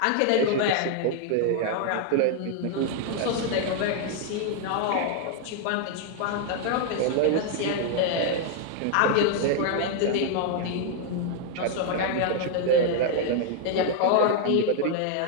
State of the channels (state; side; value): different; both; correlation 0.00